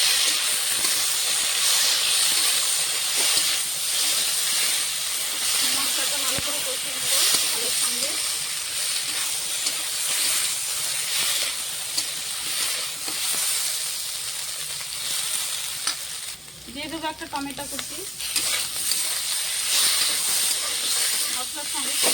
মশলাটা ভালো করে কষিয়ে নেবো আলুর সঙ্গে। দিয়ে দেবো একটা টমেটো কুচি, মশলার সঙ্গে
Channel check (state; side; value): normal; both; correlation 0.94